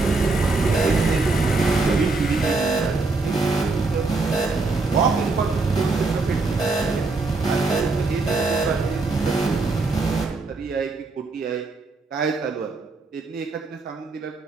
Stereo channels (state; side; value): quieter; left; 3.7 dB